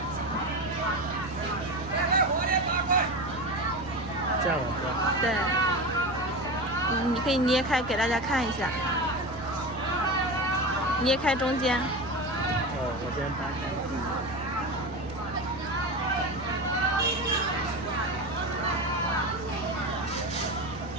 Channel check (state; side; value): normal; both; correlation 0.24